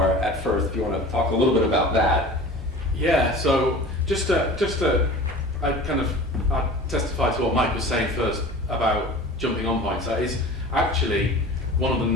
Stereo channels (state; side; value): normal; both; correlation 0.39